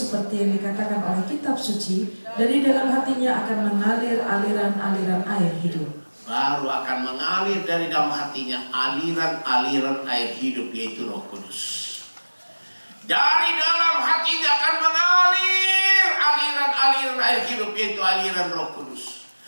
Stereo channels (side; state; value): both; inverted; correlation -1.00